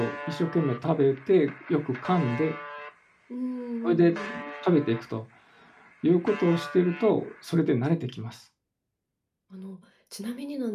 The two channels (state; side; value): identical; both; correlation 1.00